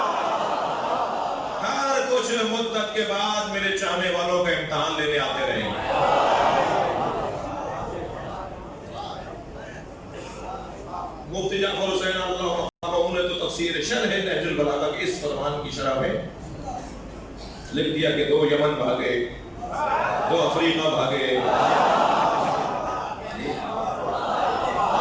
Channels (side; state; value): both; identical; correlation 1.00